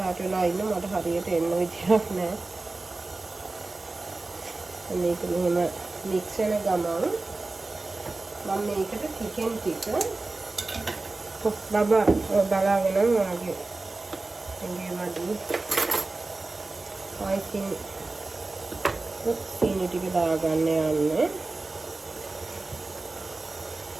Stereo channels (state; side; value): quieter; left; 3.3 dB